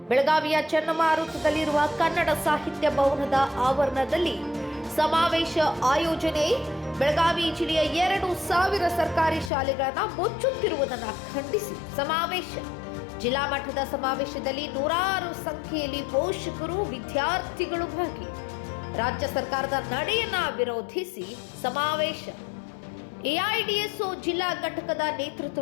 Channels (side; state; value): right; drops out; at 9.5 s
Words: ಬೆಳಗಾವಿಯ ಚನ್ನಮಾರುತದಲ್ಲಿರುವ ಕನ್ನಡ ಸಾಹಿತ್ಯ ಭವನದ ಆವರಣದಲ್ಲಿ ಸಮಾವೇಶ ಆಯೋಜನೆ. ಬೆಳಗಾವಿ ಜಿಲ್ಲೆಯ 2,000 ಸರ್ಕಾರಿ ಶಾಲೆಗಳನ್ನು ಮುಚ್ಚುತ್ತಿರುವುದನ್ನು ಖಂಡಿಸಿ ಸಮಾವೇಶ. ಜಿಲ್ಲಾ ಮಟ್ಟದ ಸಮಾವೇಶದಲ್ಲಿ ನೂರಾರು ಸಂಖ್ಯೆಯಲ್ಲಿ ಪೋಷಕರು, ವಿದ್ಯಾರ್ಥಿಗಳು ಭಾಗಿ. ರಾಜ್ಯ ಸರ್ಕಾರದ ನಡೆಯನ್ನ ವಿರೋಧಿಸಿ ಸಮಾವೇಶ. ಎಐಡಿಎಸ್ಒ ಜಿಲ್ಲಾ ಘಟಕದ